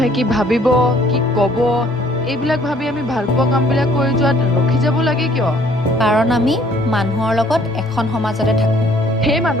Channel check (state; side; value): normal; both; correlation 0.59